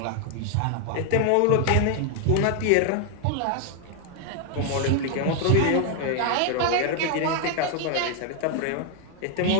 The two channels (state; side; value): different; both; correlation 0.00